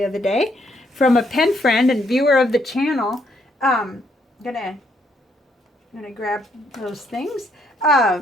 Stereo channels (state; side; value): normal; both; correlation 0.72